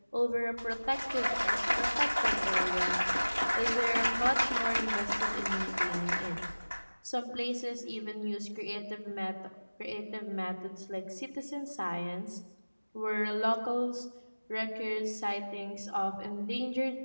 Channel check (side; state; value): both; inverted; correlation -1.00